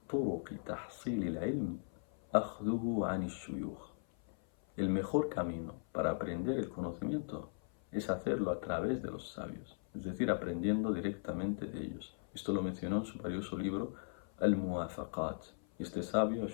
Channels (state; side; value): silent; right; 52 dB below the other